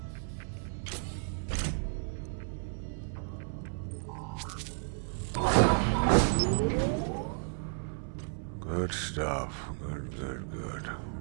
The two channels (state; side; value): silent; left; 56 dB below the other